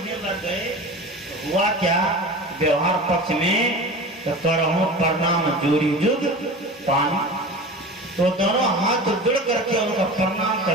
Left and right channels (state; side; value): normal; both; correlation 0.34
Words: लग गए, हुआ क्या? व्यवहार पक्ष में तो करहु प्रणाम जोड़ी जुग पानी। तो दोनों हाथ जुड़ करके उनका प्रणाम